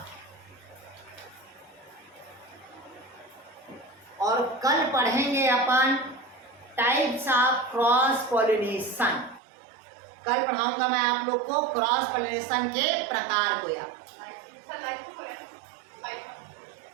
और कल पढ़ेंगे अपन टाइप्स ऑफ क्रॉस पॉलिनेशन। कल पढ़ाऊंगा मैं आप लोग को क्रॉस पॉलिनेशन के प्रकार को यार।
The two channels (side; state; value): left; drops out; at 9.4 s